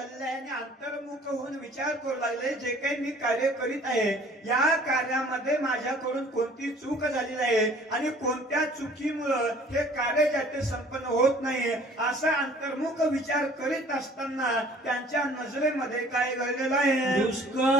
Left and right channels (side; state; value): both; normal; correlation 0.52